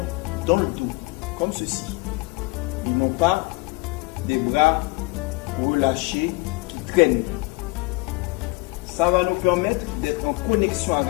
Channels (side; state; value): right; quieter; 24.6 dB